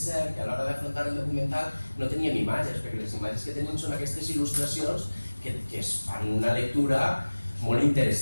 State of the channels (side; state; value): both; inverted; correlation -1.00